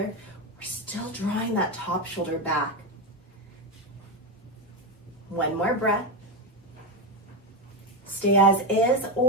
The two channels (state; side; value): normal; both; correlation 0.11